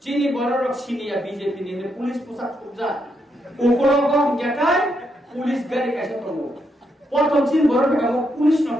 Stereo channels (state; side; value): normal; both; correlation 0.79